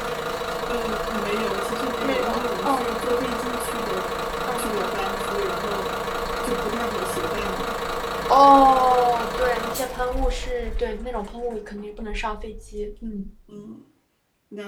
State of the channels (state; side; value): identical; both; correlation 1.00